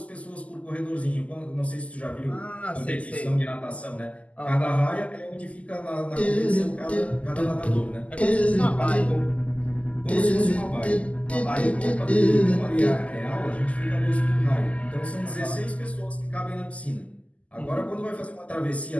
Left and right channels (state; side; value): late; right; 0.068 ms